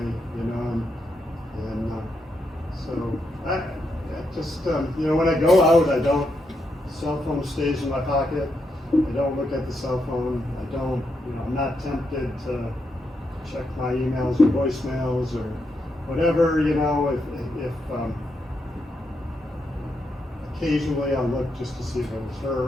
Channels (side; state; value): both; normal; correlation 0.82